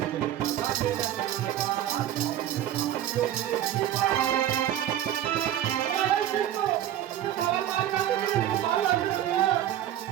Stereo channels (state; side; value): quieter; left; 11.8 dB